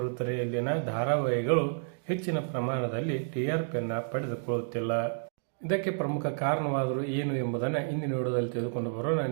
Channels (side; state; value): left; silent; digital silence